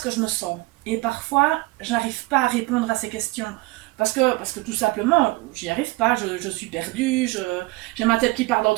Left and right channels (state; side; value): quieter; left; 22.0 dB